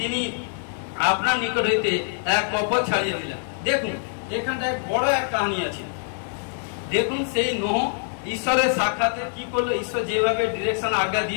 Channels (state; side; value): silent; right; 62 dB below the other